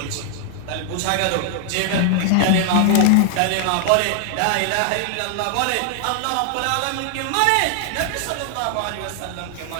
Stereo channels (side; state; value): both; different; correlation 0.00